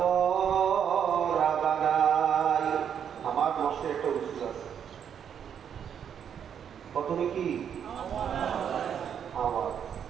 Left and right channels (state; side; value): quieter; left; 8.3 dB